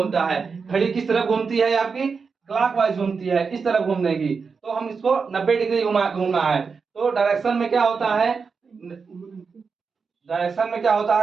है। घड़ी किस तरफ घूमती है आपकी, क्लॉकवाइज घूमती है, इस तरफ घूमने की, तो हम इसको 90 डिग्री घूमना है। तो डायरेक्शन में क्या होता है, डायरेक्शन में क्या होता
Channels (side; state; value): left; quieter; 5.3 dB